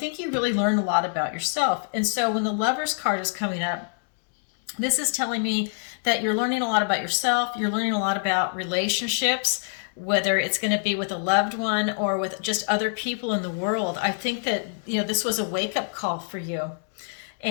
you really learn a lot about yourself. And so when the Lover's card is coming up, this is telling me that you're learning a lot about yourself. You're learning a lot about relationships, whether it's going to be with a loved one or with just other people in the world. I think that, you know, this was a wake-up call for you.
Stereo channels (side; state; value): right; silent; digital silence